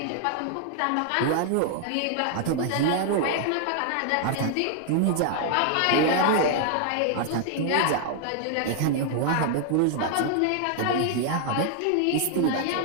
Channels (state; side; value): different; both; correlation 0.00